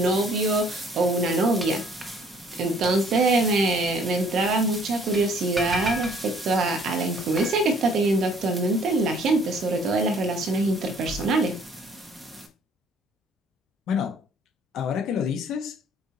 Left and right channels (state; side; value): normal; both; correlation 0.59